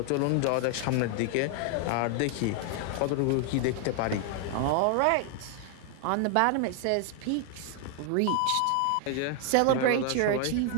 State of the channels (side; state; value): both; different; correlation 0.00